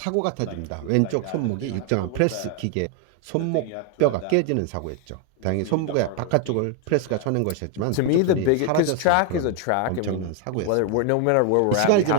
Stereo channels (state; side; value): different; both; correlation 0.01